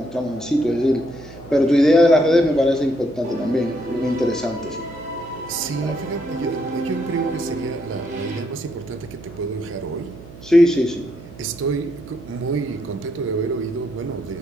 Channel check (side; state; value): right; noise; hum, 17 dB below the sound